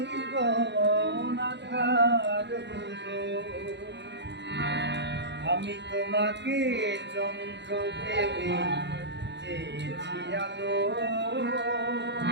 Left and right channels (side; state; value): left; late; 0.51 ms